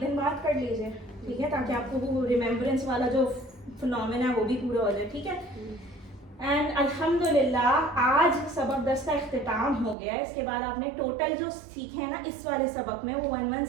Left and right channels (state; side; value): drops out; left; at 10.0 s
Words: बात कर लीजिए, ठीक है, ताकि आपको वो रिमेम्बरेंस वाला जो फिनोमेना है वो भी पूरा हो जाए, ठीक है। एंड अल्हम्दुलिल्लाह आज सबक 10 का इख्तिताम हो गया। इसके बाद आपने टोटल जो सीखे हैं ना इस वाले सबक में वो